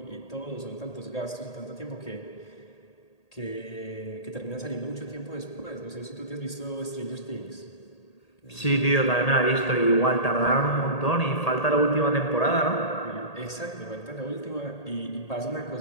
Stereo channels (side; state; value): right; late; 1.8 ms